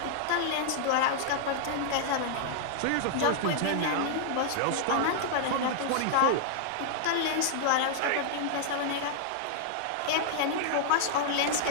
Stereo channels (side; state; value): both; different; correlation -0.01